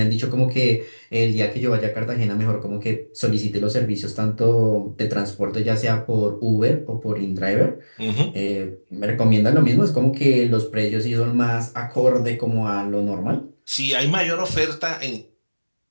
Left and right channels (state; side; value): inverted; both; correlation -1.00